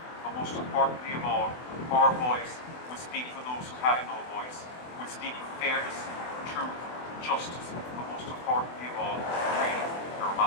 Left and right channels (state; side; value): late; right; 24 ms